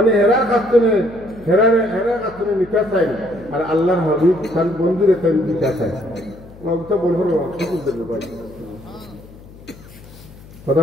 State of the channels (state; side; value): noise; left; hum, 20 dB below the sound